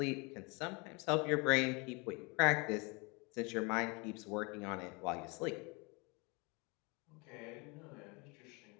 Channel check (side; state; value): right; quieter; 29.1 dB